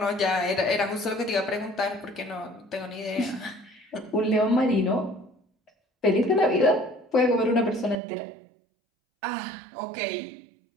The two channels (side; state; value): left; drops out; at 8.0 s